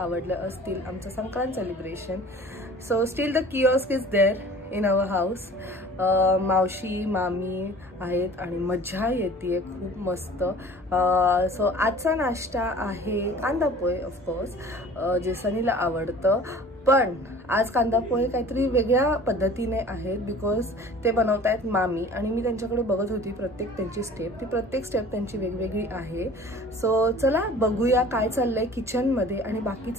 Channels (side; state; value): both; normal; correlation 0.46